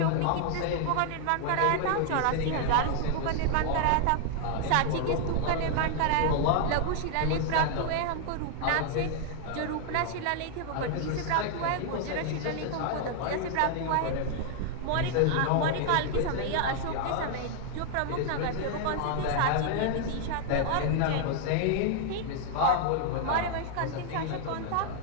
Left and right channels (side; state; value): both; different; correlation 0.00